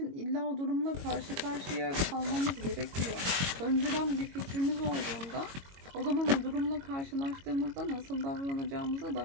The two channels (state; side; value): late; left; 22 ms